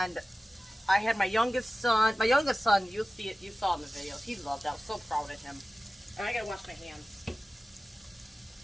I had my youngest son, you'll see it, you saw in the videos, he loved it, I was so proud of him. And I gotta wash my hands.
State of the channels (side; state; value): both; normal; correlation 0.96